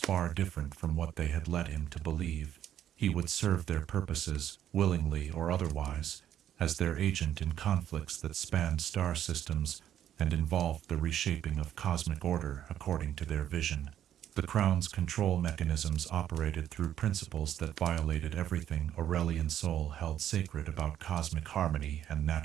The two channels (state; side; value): quieter; left; 10.8 dB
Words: different from what they had led him to believe. He would serve their purposes, willingly or otherwise, as their agent in conflicts that spanned star systems and involved the reshaping of cosmic order according to their vision. The Crown's control mechanisms operated through principles that violated everything Aurelion Sol held sacred about cosmic harmony and